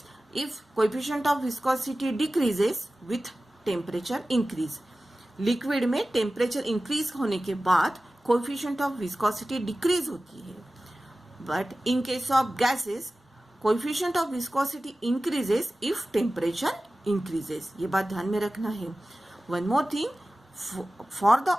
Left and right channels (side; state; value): both; normal; correlation 0.96